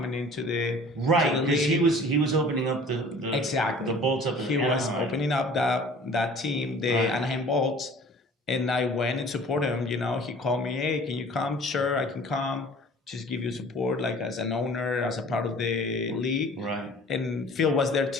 into the because he was opening up the Bolts up. He was opening up that team, the Anaheim Bolts, and I went and supported him. You know, he called me, hey, can you come? Sure, I can come. Just give you support, like as an owner, as a part of the league. Right. And Phil was there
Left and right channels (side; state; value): both; normal; correlation 0.47